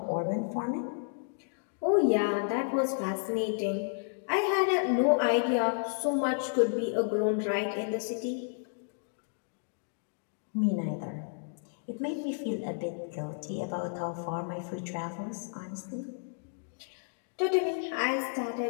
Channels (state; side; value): silent; right; digital silence